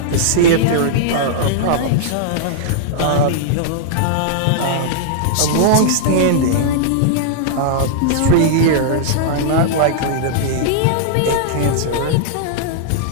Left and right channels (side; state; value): both; different; correlation -0.02